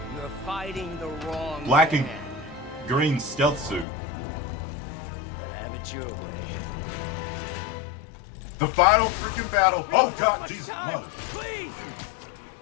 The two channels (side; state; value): right; drops out; at 3.9 s